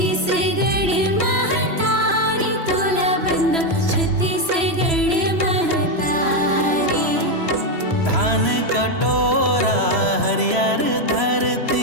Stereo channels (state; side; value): late; left; 3.0 ms